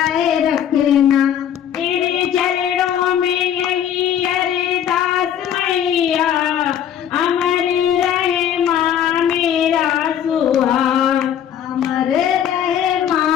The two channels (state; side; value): quieter; right; 9.6 dB